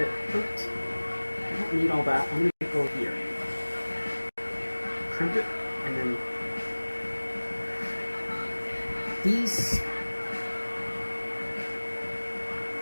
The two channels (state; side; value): inverted; both; correlation -1.00